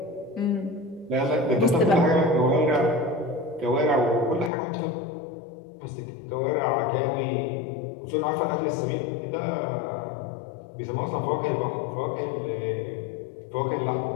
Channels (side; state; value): right; drops out; at 4.5 s